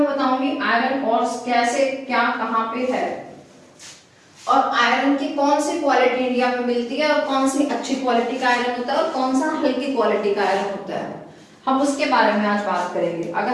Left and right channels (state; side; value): identical; both; correlation 1.00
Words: बताऊंगी आयरन और कैसे क्या कहाँ पे है और आयरन की कौन सी क्वालिटी इंडिया में मिलती है और कौन सी अच्छी क्वालिटी का आयरन होता है और कौन सा हल्की क्वालिटी का आयरन होता है, हम उसके बारे में आज बात करेंगे। अगर